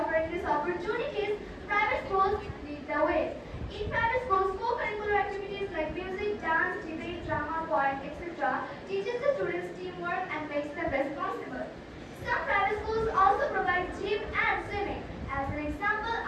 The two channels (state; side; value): identical; both; correlation 1.00